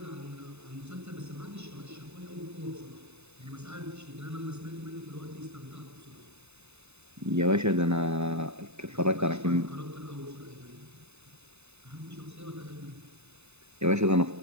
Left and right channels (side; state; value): left; late; 0.81 ms